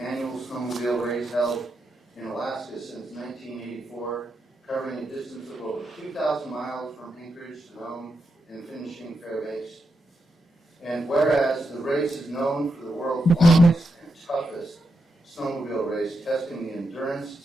annual snowmobile race held in Alaska since 1984, covering a distance of over 2,000 miles from Anchorage to Nome and finishing Fairbanks. And whereas the race is known for the world's longest and toughest snowmobile race, testing the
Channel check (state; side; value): normal; both; correlation 0.84